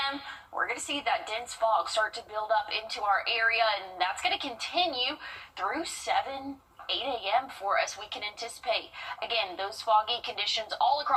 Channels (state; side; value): identical; both; correlation 1.00